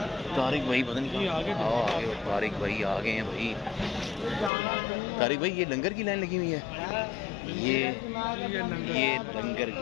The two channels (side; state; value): right; drops out; at 4.5 s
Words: तारिक भाई पता नहीं आगे तारिक भाई आ गए हैं भाई। तारिक भाई ये लंगर की लाइन लगी हुई है, ये लंगर